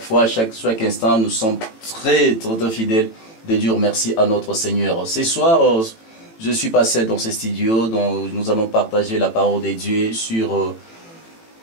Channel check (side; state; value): right; late; 18 ms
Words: chaque instant, nous sommes très fidèles de dire merci à notre Seigneur. Ce soir, je suis pas seul dans ce studio, donc nous allons partager la parole de Dieu sur